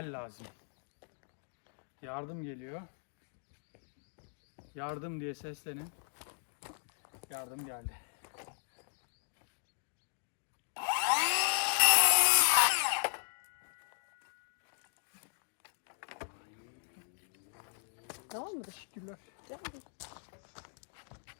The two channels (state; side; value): silent; right; digital silence